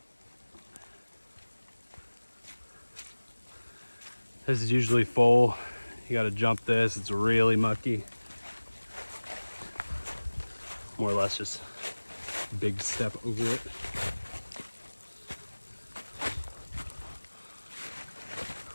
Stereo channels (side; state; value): both; inverted; correlation -1.00